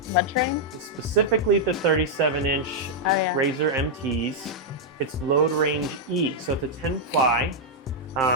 mud terrain. Specifically the 37-inch Oh yeah. Razor MTs. It's Load Range E, so it's a 10 ply.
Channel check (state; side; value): normal; both; correlation -0.04